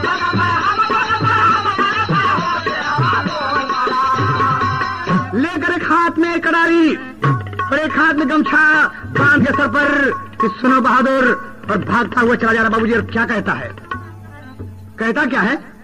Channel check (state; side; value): identical; both; correlation 1.00